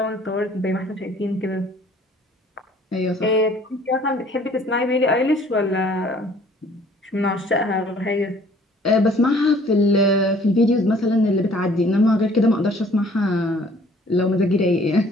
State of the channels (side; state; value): both; normal; correlation 0.56